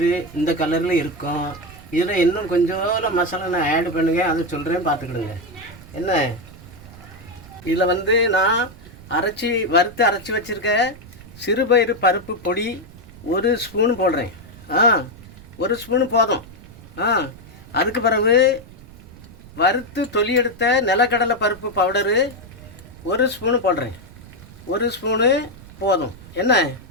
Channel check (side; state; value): right; noise; rumble, 19 dB below the sound